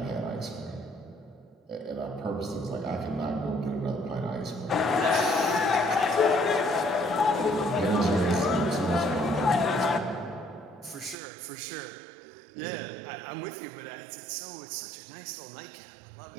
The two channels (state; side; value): drops out; left; at 11.2 s